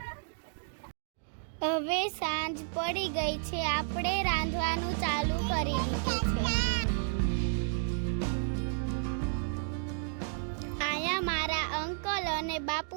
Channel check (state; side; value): silent; left; digital silence